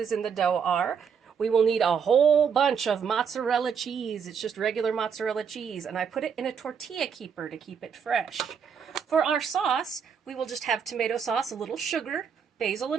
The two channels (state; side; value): quieter; left; 6.8 dB